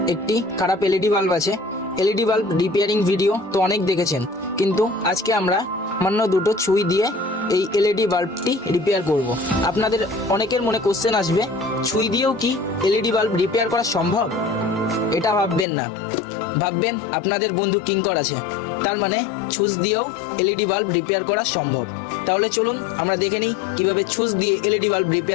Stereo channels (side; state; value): right; drops out; at 15.7 s